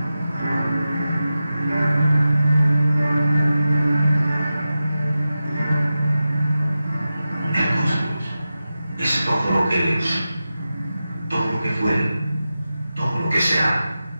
El cosmos es todo lo que es, todo lo que fue, todo lo que será.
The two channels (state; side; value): inverted; both; correlation -0.93